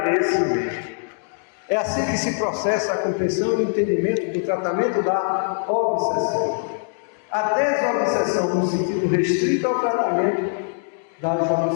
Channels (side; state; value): right; silent; digital silence